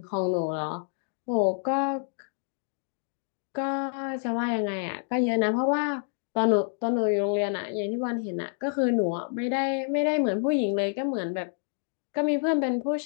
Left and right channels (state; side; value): silent; right; 59 dB below the other